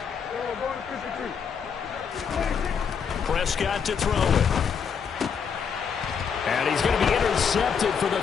Prescott to throw it. And he's going to be intercepted for the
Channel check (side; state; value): right; quieter; 6.7 dB